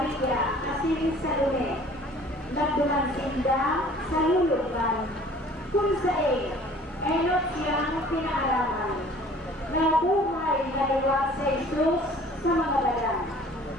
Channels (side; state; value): both; normal; correlation 0.50